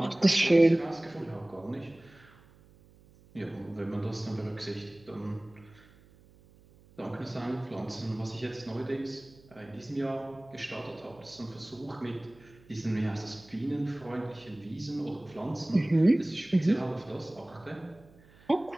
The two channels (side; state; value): right; noise; hum, 26 dB below the sound